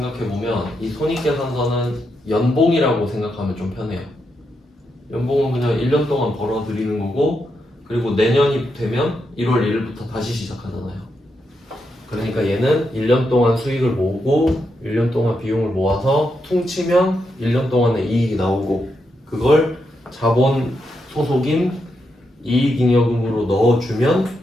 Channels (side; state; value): both; normal; correlation 0.83